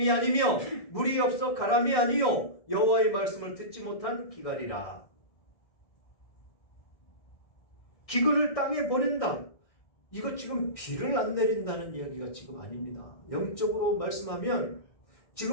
아니며 물이 없어 가람이 아니요 여호와의 말씀을 듣지 못한 기갈이라. 기근을 땅에 보낸다. 이거 지금 비를 안 내린다는 이야기가 지금 아닙니다. 영적으로 말씀하면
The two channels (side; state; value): right; late; 1.6 ms